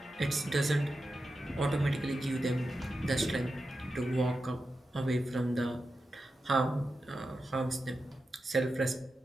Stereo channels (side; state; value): both; normal; correlation 0.90